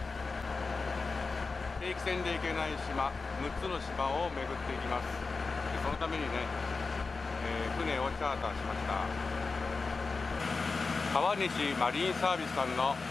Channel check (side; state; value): right; quieter; 4.2 dB